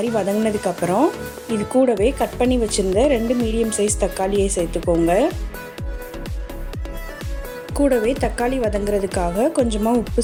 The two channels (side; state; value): both; identical; correlation 1.00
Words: வதங்கினதுக்கப்புறம் இது கூடவே கட் பண்ணி வச்சுருந்த 2 மீடியம் சைஸ் தக்காளியை சேர்த்துக்கோங்க. கூடவே தக்காளி வதங்கிறதுக்காக கொஞ்சமாக உப்பு